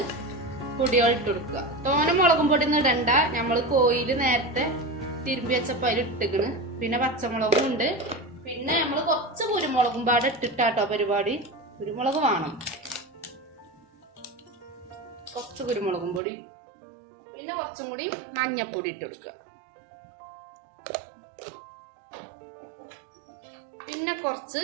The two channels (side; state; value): left; drops out; at 16.2 s